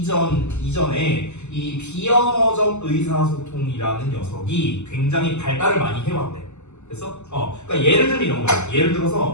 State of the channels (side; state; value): right; late; 0.83 ms